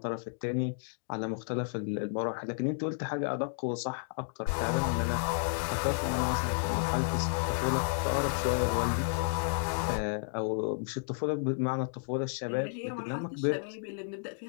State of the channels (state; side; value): silent; right; digital silence